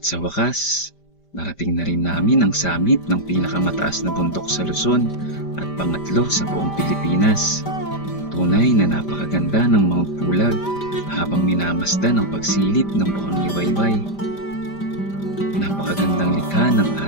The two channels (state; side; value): late; right; 5.1 ms